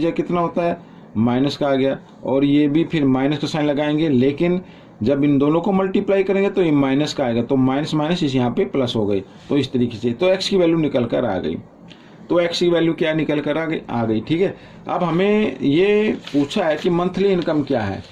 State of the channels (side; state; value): both; identical; correlation 1.00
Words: कितना होता है, माइनस का आ गया, और ये भी फिर माइनस का साइन लगाएंगे, लेकिन जब इन दोनों को मल्टीप्लाई करेंगे तो ये माइनस का आएगा, तो माइनस माइनस इस यहाँ पे प्लस हो गई। तो इस तरीके से तो एक्स की वैल्यू निकल कर आ गई। तो एक्स की वैल्यू क्या निकल कर आ गई, ठीक है। अब हमें ये पूछा है कि मंथली इनकम क्या है।